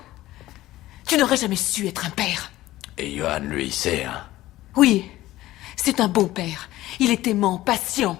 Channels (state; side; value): quieter; right; 16.1 dB